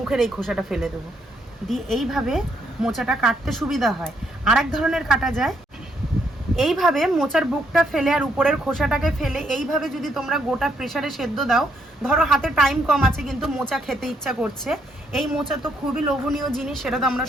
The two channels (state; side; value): normal; both; correlation 0.73